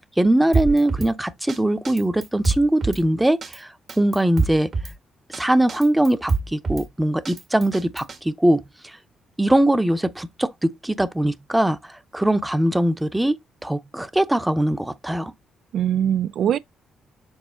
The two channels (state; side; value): normal; both; correlation 0.96